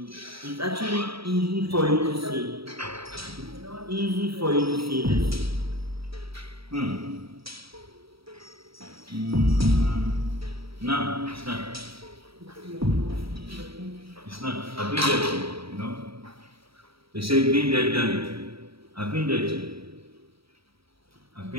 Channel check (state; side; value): late; left; 0.76 ms